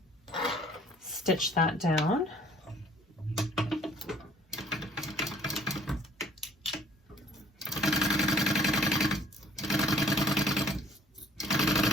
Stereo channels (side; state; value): both; normal; correlation 0.56